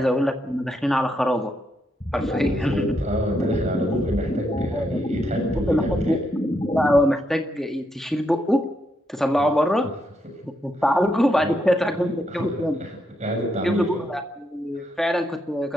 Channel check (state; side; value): normal; both; correlation 0.79